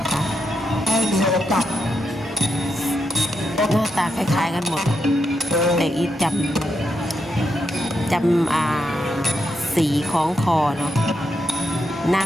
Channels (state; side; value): normal; both; correlation 0.83